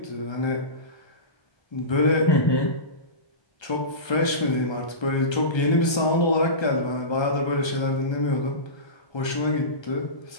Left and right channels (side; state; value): right; late; 1.3 ms